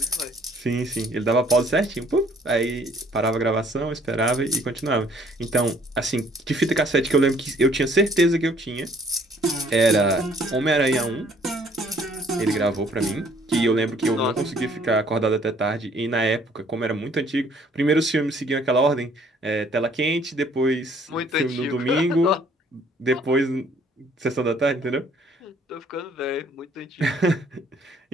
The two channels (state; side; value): normal; both; correlation 0.60